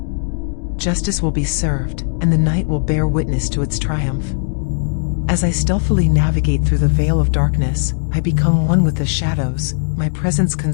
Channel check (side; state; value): right; silent; 68 dB below the other